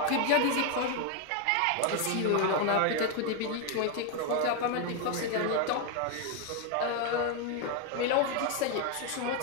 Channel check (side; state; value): both; different; correlation 0.01